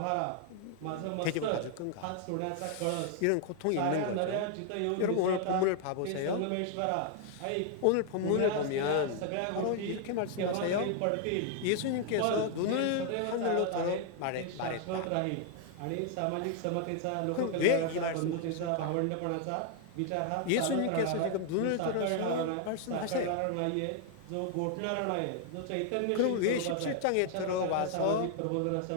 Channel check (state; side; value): different; both; correlation 0.00